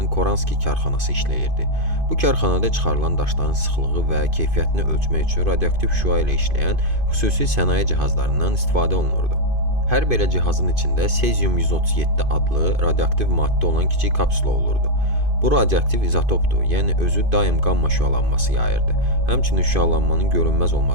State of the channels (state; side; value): late; left; 2.5 ms